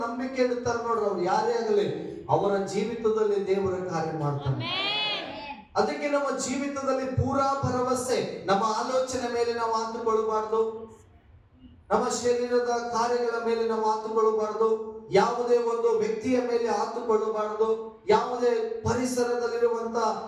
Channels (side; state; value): both; identical; correlation 1.00